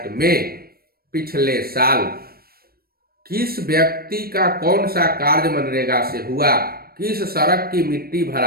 में पिछले साल किस व्यक्ति का कौन सा कार्य मनरेगा से हुआ, किस सड़क की मिट्टी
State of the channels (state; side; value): late; left; 0.44 ms